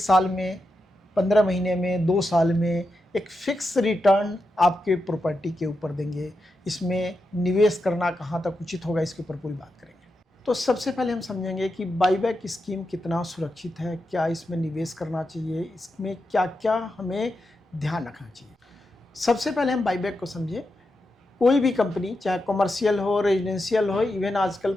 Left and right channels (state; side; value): normal; both; correlation 0.87